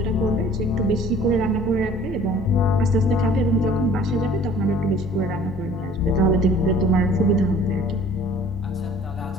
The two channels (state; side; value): normal; both; correlation 0.51